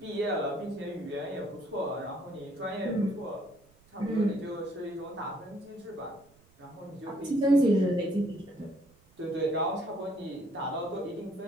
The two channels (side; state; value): right; noise; rumble, 30 dB below the sound